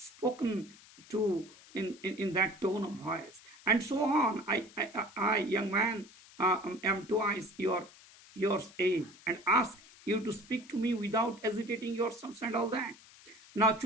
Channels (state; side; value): noise; left; hiss, 22 dB below the sound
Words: to in that tone of voice. And so on. I young man, am twice your age and ask you to speak to me without hesitating your sons and all that. Now,